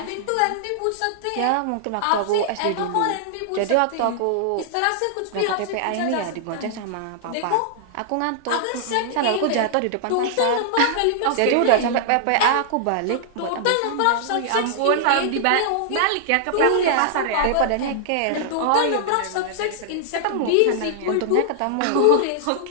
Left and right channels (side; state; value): both; different; correlation -0.01